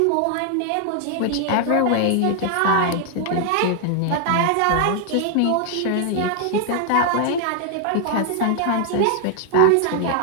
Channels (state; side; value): different; both; correlation 0.00